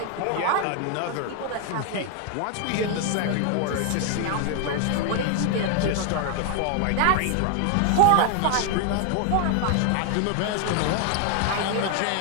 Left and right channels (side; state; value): both; different; correlation 0.00